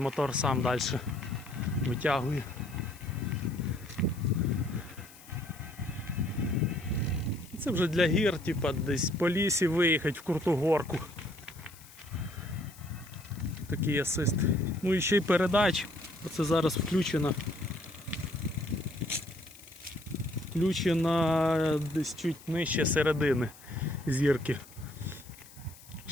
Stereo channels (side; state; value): left; noise; hiss, 21 dB below the sound